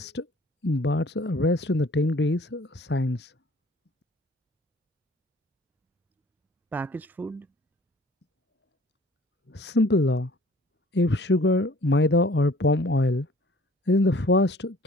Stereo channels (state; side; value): normal; both; correlation 0.52